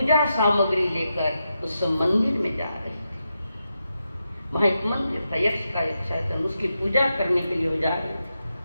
सामग्री लेकर उस मंदिर में जा रही थी। वहां एक मंदिर था, यक्ष का एक शायद, उसकी पूजा करने के लिए वो जा रही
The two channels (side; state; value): both; inverted; correlation -0.87